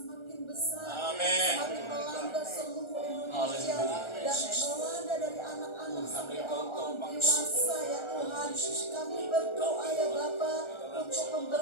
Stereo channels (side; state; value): right; late; 1.4 ms